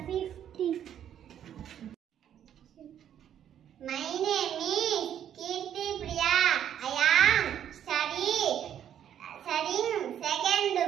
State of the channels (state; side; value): quieter; left; 9.9 dB